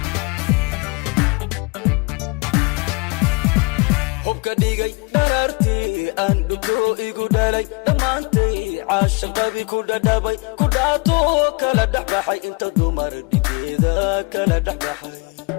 hubka dhigay darartii aan dhito igu dhalay dhamaantay caashaqadii ku dhadhabay ku dhaato kala dhexbaxay inta dumar dhigida kala dhexbaxay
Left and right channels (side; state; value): right; quieter; 28.5 dB